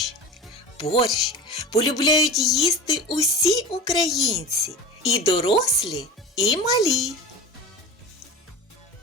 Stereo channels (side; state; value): both; normal; correlation 0.32